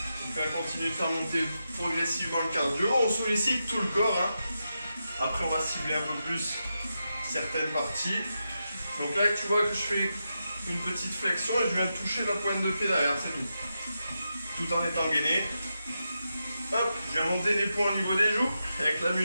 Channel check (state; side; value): inverted; both; correlation -0.88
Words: On va continuer de faire monter progressivement le cardio. On sollicite tout le corps. Après, on va cibler un peu plus certaines parties. Donc là, tu vois que je fais une petite flexion et je viens toucher la pointe de pied derrière, c'est tout. Tout en étant gainé. Hop, je viens monter les points au niveau des joues. Et avec la